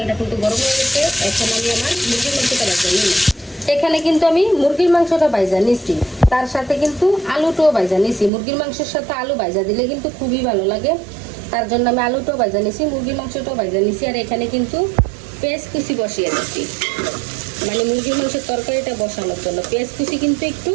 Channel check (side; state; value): left; drops out; at 8.3 s